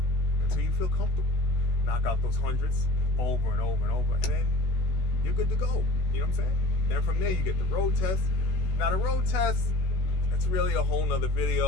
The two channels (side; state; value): right; late; 16 ms